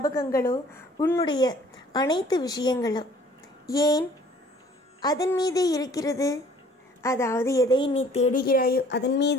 உன்னுடைய அனைத்து விஷயங்களோ ஏன் அதன் மீதே இருக்கிறது? அதாவது எதை நீ தேடுகிறாயோ அதன்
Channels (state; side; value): normal; both; correlation 0.54